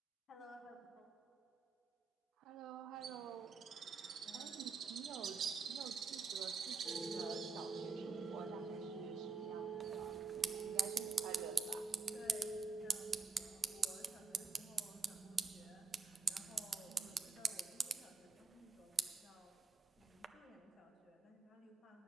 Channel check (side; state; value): left; quieter; 4.7 dB